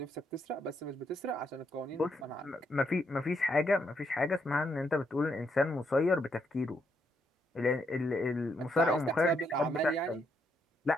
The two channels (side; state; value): both; normal; correlation 0.76